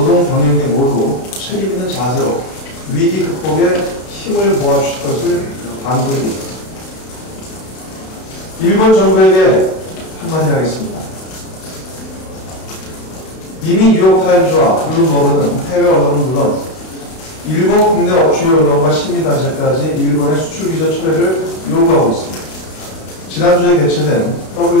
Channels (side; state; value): right; late; 32 ms